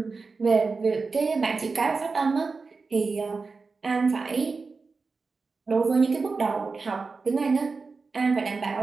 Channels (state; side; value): quieter; left; 4.3 dB